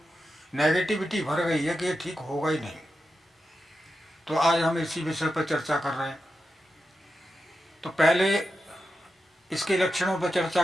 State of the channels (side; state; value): both; normal; correlation 0.89